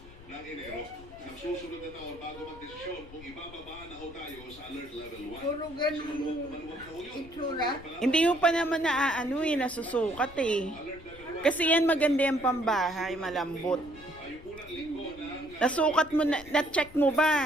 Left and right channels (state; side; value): noise; left; rumble, 19 dB below the sound